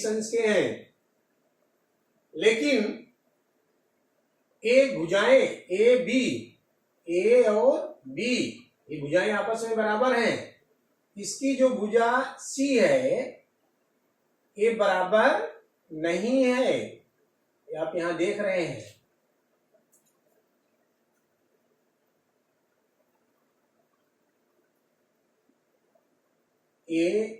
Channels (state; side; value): identical; both; correlation 1.00